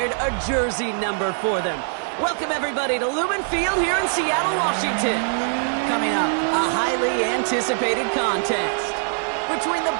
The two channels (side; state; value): left; silent; digital silence